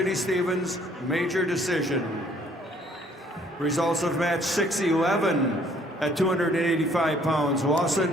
Stevens, major decision. Results of match 611 at 285 pounds.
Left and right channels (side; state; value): both; normal; correlation 0.61